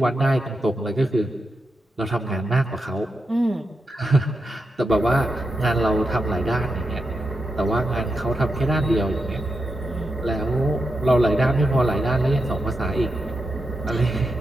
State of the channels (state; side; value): normal; both; correlation 0.87